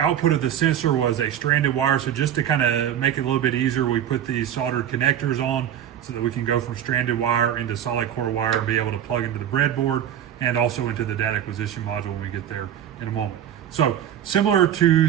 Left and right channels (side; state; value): left; quieter; 10.3 dB